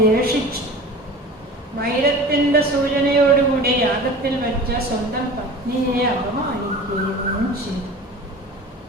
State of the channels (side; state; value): both; normal; correlation 0.38